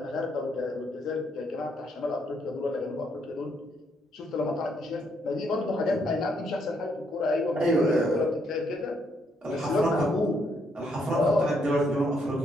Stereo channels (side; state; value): both; normal; correlation 0.73